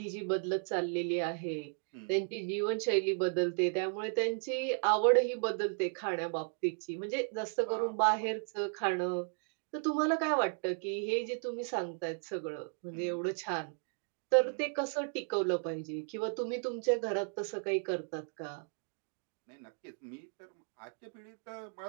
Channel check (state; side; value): silent; left; 54 dB below the other